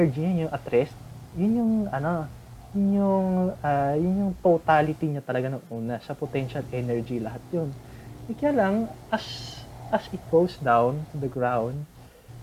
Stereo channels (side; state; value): both; identical; correlation 1.00